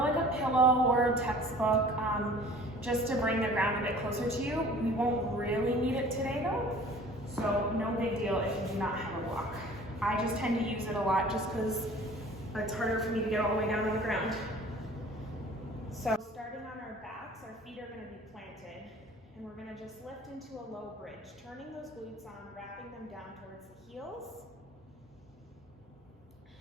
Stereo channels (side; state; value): both; normal; correlation 0.48